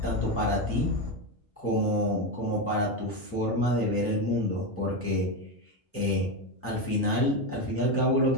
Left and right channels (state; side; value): normal; both; correlation 0.12